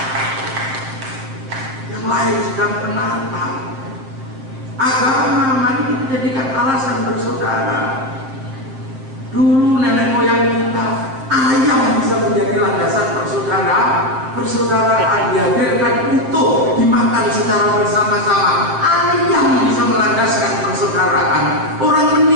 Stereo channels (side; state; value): left; late; 7.5 ms